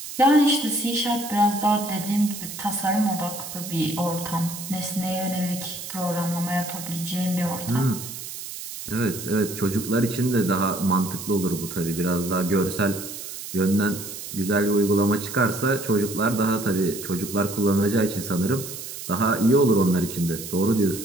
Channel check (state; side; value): noise; right; hiss, 10 dB below the sound